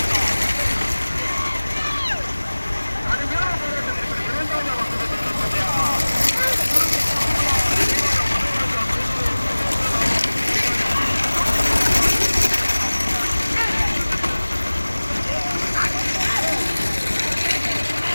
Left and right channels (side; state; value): both; inverted; correlation -1.00